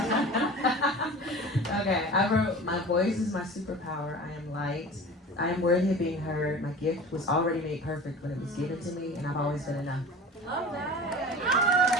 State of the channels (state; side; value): normal; both; correlation 0.37